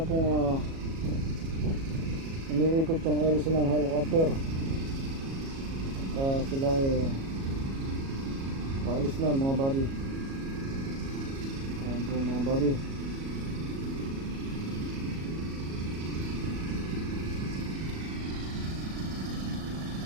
pong umiikot yung LC ng helicopter. At sila ay paalis na mga buddy. Ayan po mga buddy.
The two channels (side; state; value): left; late; 37 ms